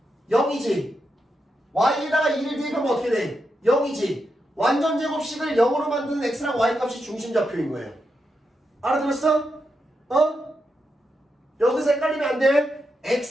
0이지. y에다가 2를 대입하면 어떻게 돼? 0이지. 완전 제곱식을 0으로 만드는 x랑 y 값이 중심좌표인 거예요. 알아들었어? 어? 여기서 헷갈리면 안 돼.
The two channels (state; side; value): normal; both; correlation 0.85